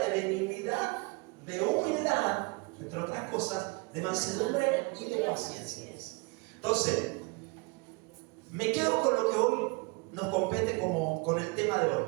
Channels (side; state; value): left; quieter; 28.7 dB